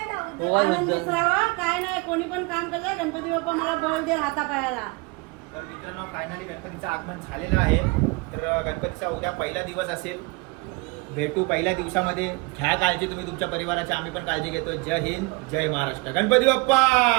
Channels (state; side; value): quieter; left; 27.4 dB